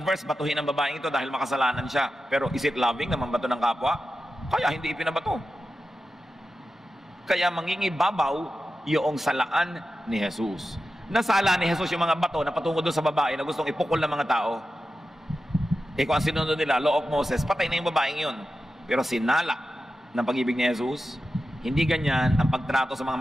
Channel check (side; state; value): both; normal; correlation 0.92